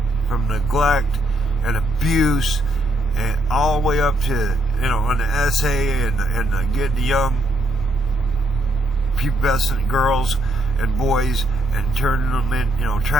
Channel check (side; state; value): both; normal; correlation 0.76